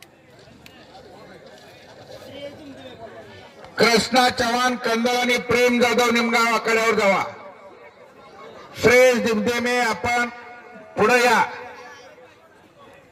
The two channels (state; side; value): identical; both; correlation 1.00